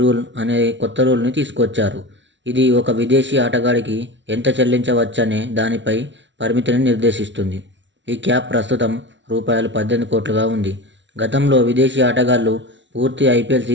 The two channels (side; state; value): left; late; 0.54 ms